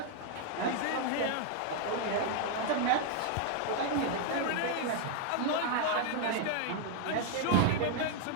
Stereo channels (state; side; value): different; both; correlation 0.00